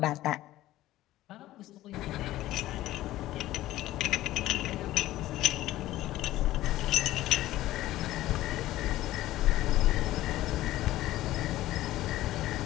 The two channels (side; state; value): right; quieter; 15.4 dB